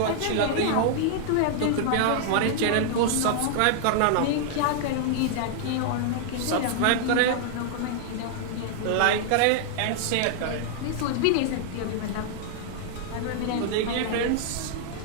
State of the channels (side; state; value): both; different; correlation -0.01